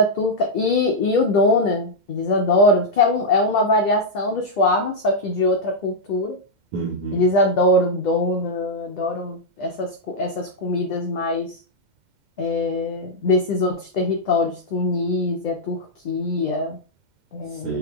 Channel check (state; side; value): late; left; 2.1 ms